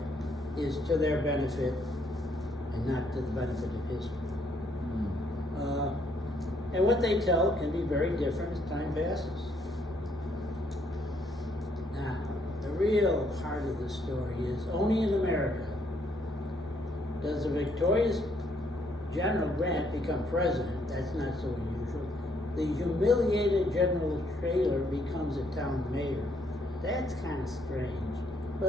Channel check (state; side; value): normal; both; correlation 0.70